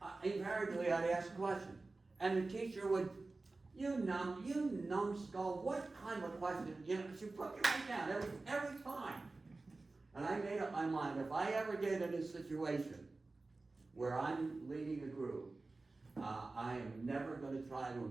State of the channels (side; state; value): left; quieter; 3.4 dB